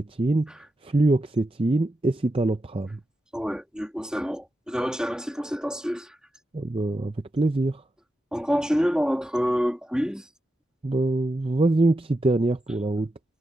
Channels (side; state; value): both; normal; correlation 0.88